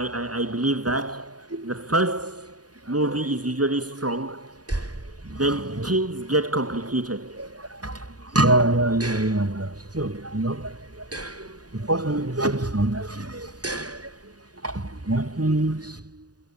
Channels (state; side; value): late; left; 0.68 ms